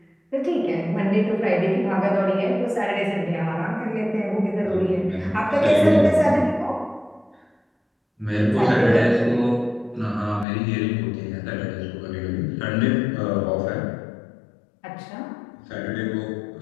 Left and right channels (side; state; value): right; drops out; at 10.5 s